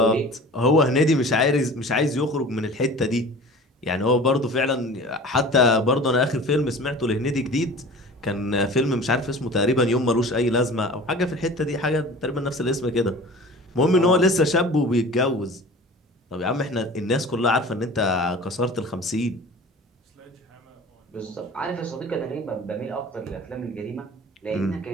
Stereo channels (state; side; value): normal; both; correlation 0.41